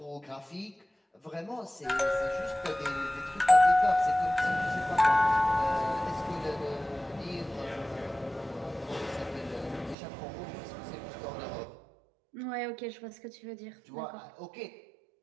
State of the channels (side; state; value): left; drops out; at 10.0 s